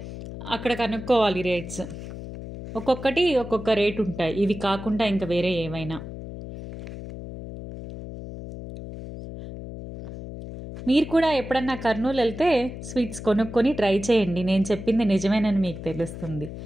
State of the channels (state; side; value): noise; left; hum, 10 dB below the sound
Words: అక్కడ కనుక్కోవాలి రేట్స్. ఒక్కొక్కటి ఒక్కొక్క రేట్ ఉంటాయి. ఇవి కాకుండా ఇంకా వేరే ఏమైనా. మీరు కూడా ఎప్పుడన్నా కర్నూలు వెళ్తే స్వీట్స్ కొనుక్కొని ట్రై చేయండి. నేను చెప్పింది నిజమేనని మీకు తెలుస్తుంది.